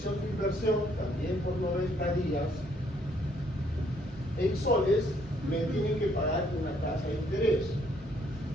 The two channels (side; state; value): both; normal; correlation 0.67